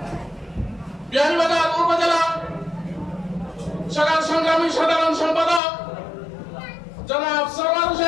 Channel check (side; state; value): right; drops out; at 5.6 s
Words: বিহারীবাজার উপজেলা শাখার সংগ্রামী সাধারণ সম্পাদক জনাব সরওয়ার